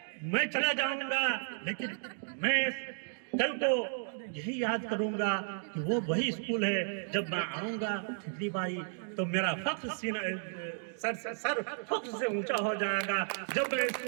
मैं चला जाऊंगा, लेकिन मैं कल को यही याद करूंगा कि वो वही स्कूल है। जब मैं आऊंगा ठिकरी बारी तो मेरा फख्र सीना सर फख्र से ऊंचा हो जाएगा जब मैं इस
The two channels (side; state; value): left; silent; digital silence